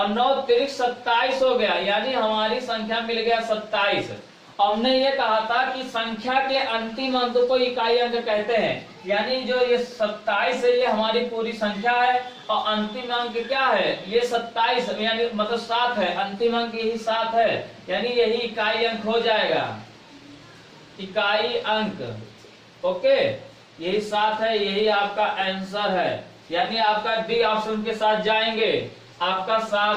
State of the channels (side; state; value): both; identical; correlation 1.00